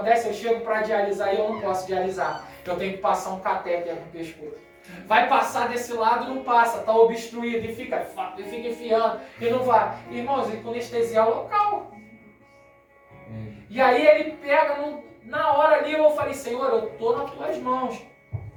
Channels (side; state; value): both; identical; correlation 1.00